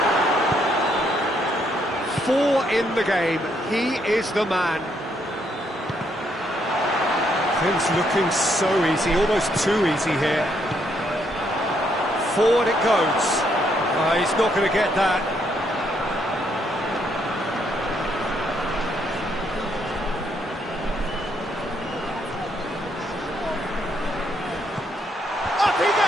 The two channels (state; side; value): normal; both; correlation 0.73